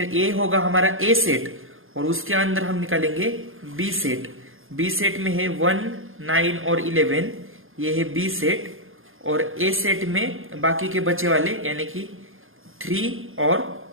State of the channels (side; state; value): left; late; 0.60 ms